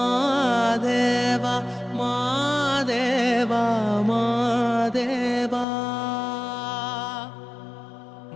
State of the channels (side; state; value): right; drops out; at 5.7 s